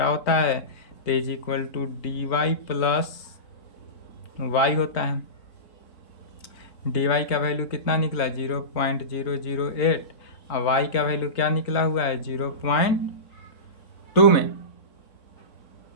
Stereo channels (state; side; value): late; right; 4.0 ms